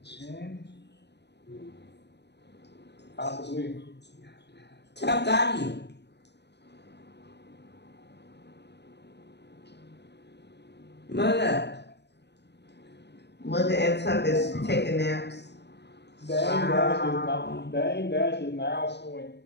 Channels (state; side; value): late; right; 0.50 ms